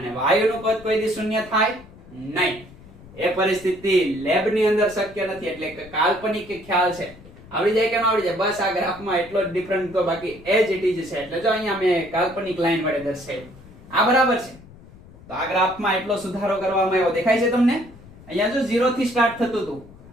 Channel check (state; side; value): noise; left; rumble, 21 dB below the sound